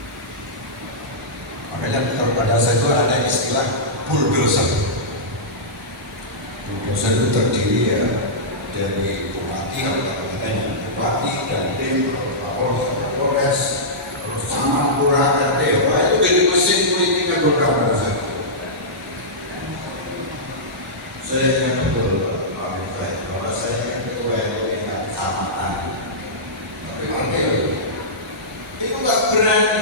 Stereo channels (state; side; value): normal; both; correlation -0.15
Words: Makanya pada saat itu ada istilah bulldozer. Bulldozer itu terdiri ya dari bupati, bupati dan tim, Polres, terus sama lurah dan dewa itu jadi mesin politik yang bergerak. Saya ingat betul bahwa saya ketua RW Kecamatan. Tapi itu nggak